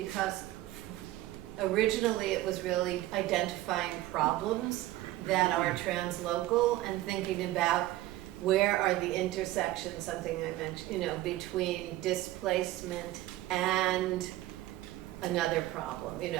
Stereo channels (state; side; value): quieter; left; 16.2 dB